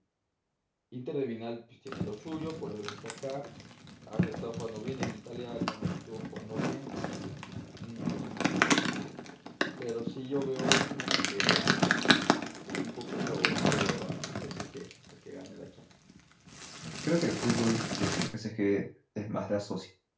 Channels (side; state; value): both; identical; correlation 1.00